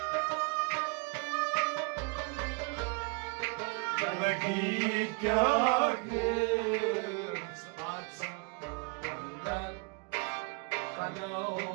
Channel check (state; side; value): quieter; left; 32.5 dB